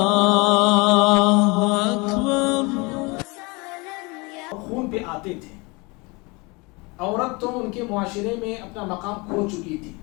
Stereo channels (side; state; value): right; quieter; 26.9 dB